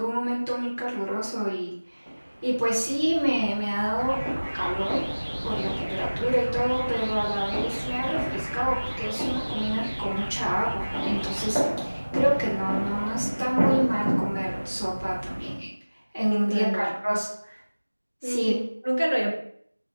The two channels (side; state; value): both; inverted; correlation -1.00